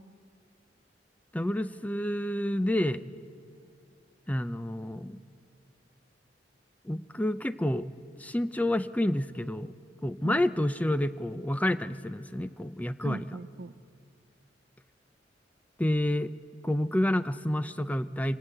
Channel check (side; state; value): both; normal; correlation 0.93